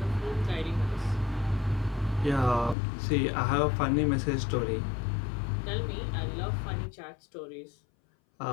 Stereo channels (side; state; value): right; drops out; at 2.8 s